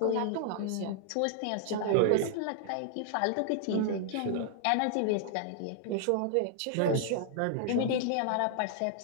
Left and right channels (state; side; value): different; both; correlation -0.01